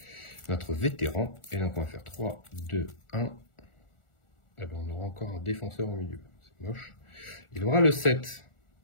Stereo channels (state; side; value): late; right; 1.4 ms